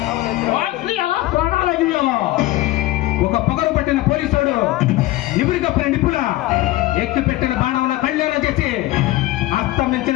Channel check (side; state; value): right; quieter; 17.2 dB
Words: ఒక పొగరు పట్టిన పోలీసుడు నిపురి కప్పిన నిపుల ఎక్కి పెట్టిన బాణంల కళ్యాణం చేసి